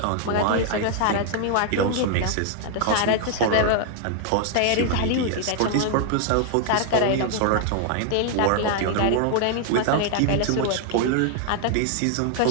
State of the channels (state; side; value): different; both; correlation 0.00